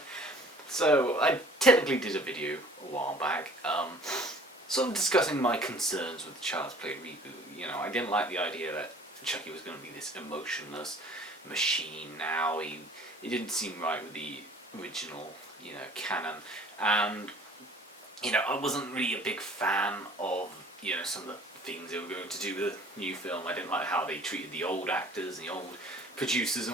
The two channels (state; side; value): normal; both; correlation 0.51